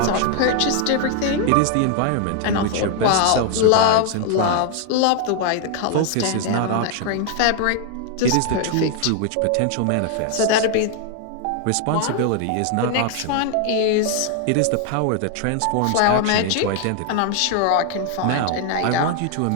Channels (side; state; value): both; different; correlation 0.00